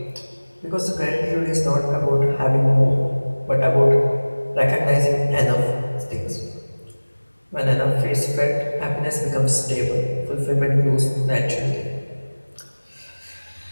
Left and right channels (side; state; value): both; inverted; correlation -1.00